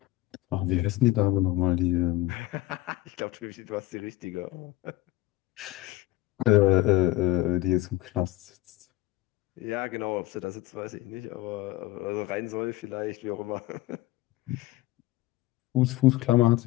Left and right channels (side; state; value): right; quieter; 17.3 dB